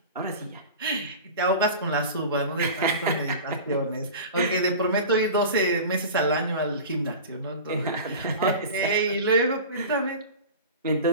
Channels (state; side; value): inverted; both; correlation -0.33